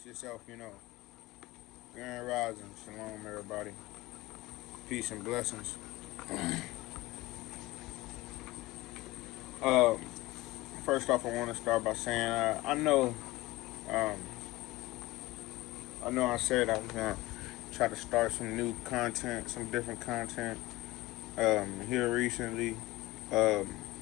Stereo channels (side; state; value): right; quieter; 19.4 dB